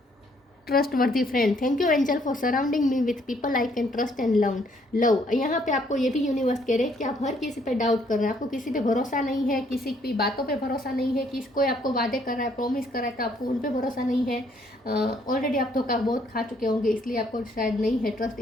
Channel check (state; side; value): normal; both; correlation 0.67